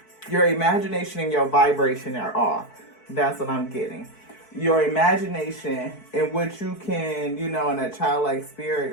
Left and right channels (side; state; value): right; late; 4.6 ms